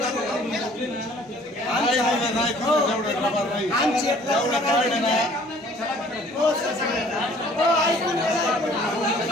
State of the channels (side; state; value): both; normal; correlation 0.55